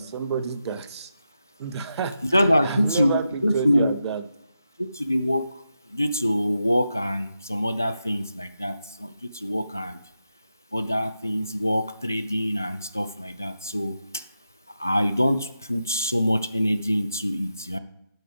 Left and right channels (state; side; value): inverted; both; correlation -0.87